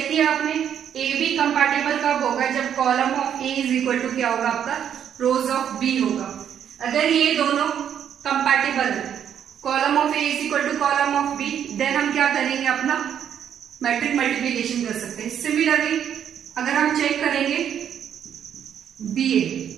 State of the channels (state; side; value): quieter; left; 9.1 dB